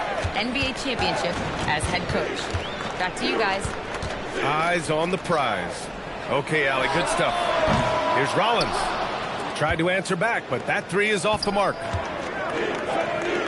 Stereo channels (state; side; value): identical; both; correlation 1.00